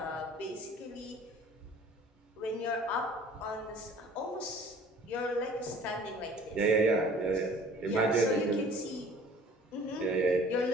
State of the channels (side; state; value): both; normal; correlation 0.50